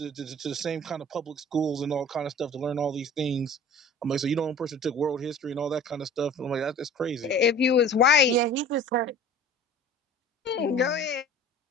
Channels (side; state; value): both; normal; correlation 0.44